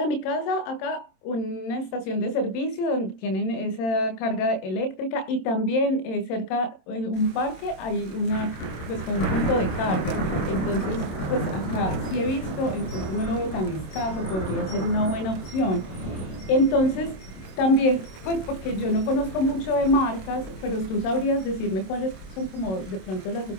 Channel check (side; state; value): right; late; 27 ms